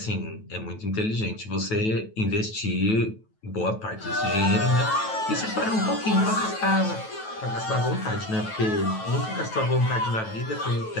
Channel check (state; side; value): late; right; 9.2 ms